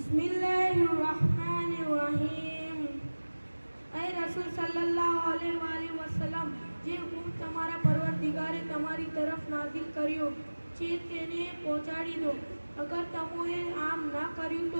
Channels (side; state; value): both; inverted; correlation -1.00